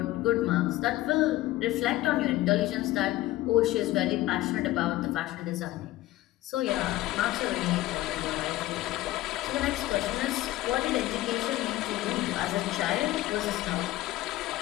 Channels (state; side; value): quieter; right; 16.4 dB